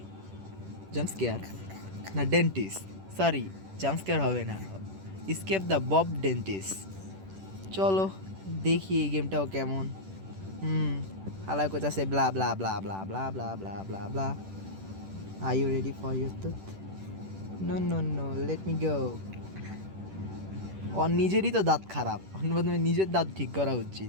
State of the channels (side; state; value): left; late; 10 ms